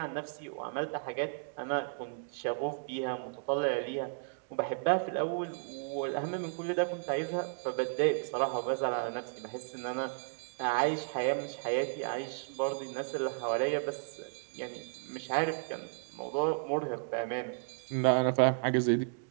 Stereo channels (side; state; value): left; silent; digital silence